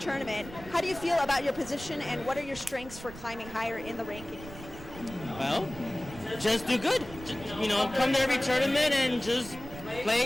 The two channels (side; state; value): right; noise; rumble, 15 dB below the sound